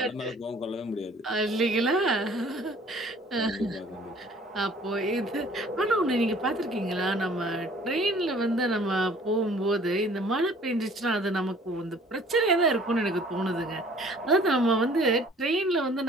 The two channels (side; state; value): both; normal; correlation 0.53